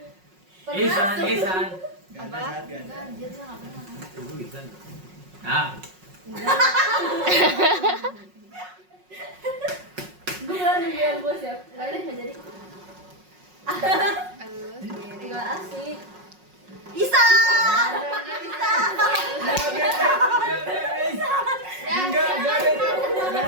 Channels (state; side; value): late; left; 5.5 ms